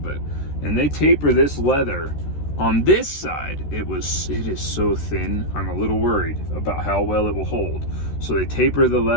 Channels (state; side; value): late; right; 13 ms